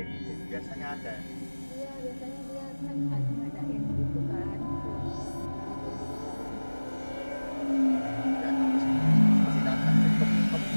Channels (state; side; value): inverted; both; correlation -1.00